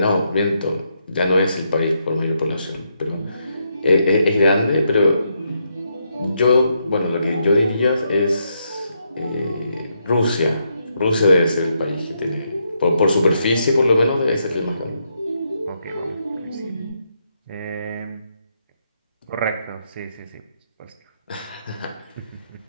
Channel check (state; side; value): inverted; both; correlation -0.79